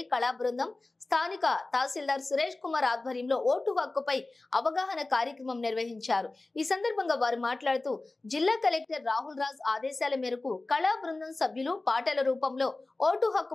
కళా బృందం స్థానిక తహసీల్దార్ సురేష్ కుమార్ ఆధ్వర్యంలో ఓటు హక్కుపై అవగాహన కార్యక్రమం నిర్వహించారు. ఈ సందర్భంగా వారు మాట్లాడుతూ జిల్లా కలెక్టర్ రాహుల్ రాజ్ ఆదేశాల మేరకు కళా బృందం సభ్యులు పాటల రూపంలో ఓటు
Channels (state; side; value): quieter; right; 3.1 dB